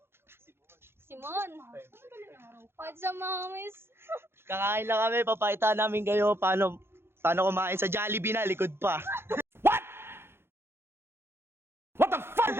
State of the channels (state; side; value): late; left; 0.11 ms